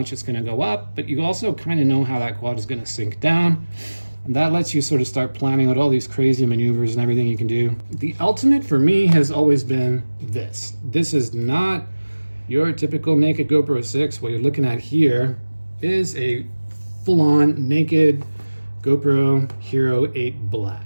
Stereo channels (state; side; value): inverted; both; correlation -1.00